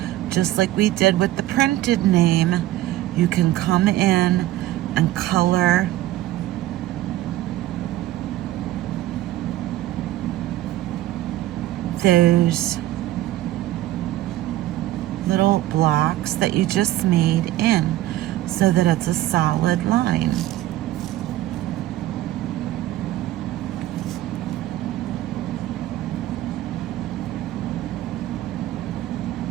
just like we did with the printed name, you can come in and color those little blocks that you just made in so that it's a solid line.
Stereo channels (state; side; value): quieter; left; 15.1 dB